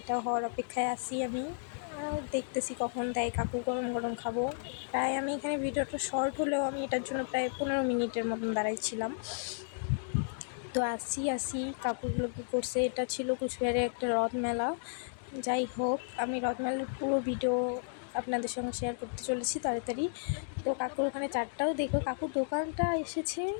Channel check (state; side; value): silent; right; digital silence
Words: হওয়ার অপেক্ষায় আছি আমি, দেখতেছি কখন দেয় কাকু। গরম গরম খাবো। প্রায় আমি এখানে ভিডিওটা শর্ট হলেও আমি এটার জন্য প্রায় 15 মিনিটের মতন দাঁড়াইছিলাম। তো আসি কাকুগুলো কী করছে। এটা ছিল কুচবিহারের একটা রথ মেলা। যাই হোক, আমি রথ মেলার পুরো ভিডিও আপনাদের সঙ্গে শেয়ার করতে চলেছি তাড়াতাড়ি। তো কাকুর ওখানে চারটাও দেখো, কাকুর দোকানটা এসেছে